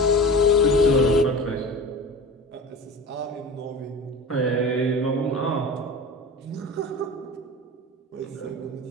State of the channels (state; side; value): normal; both; correlation 0.34